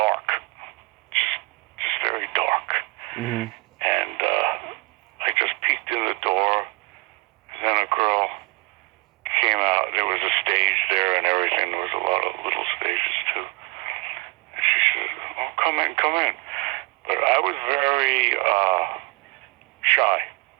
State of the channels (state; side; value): quieter; left; 26.4 dB